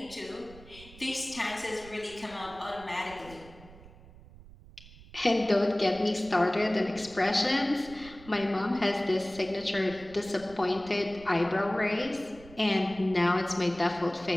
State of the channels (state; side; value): noise; right; rumble, 20 dB below the sound